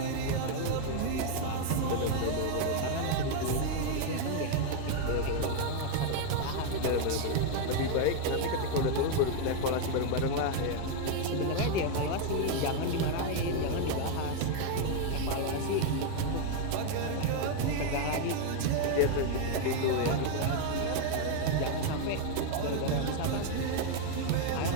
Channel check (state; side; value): different; both; correlation 0.00